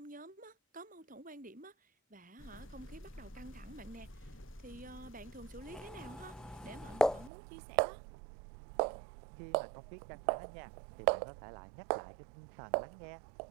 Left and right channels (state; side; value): drops out; left; at 7.3 s